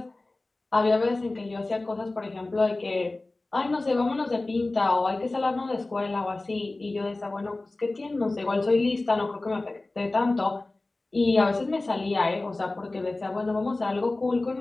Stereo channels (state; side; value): quieter; right; 3.0 dB